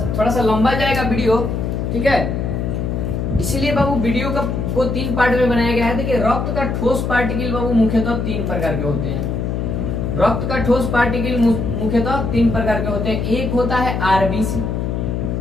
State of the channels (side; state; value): left; noise; hum, 1 dB below the sound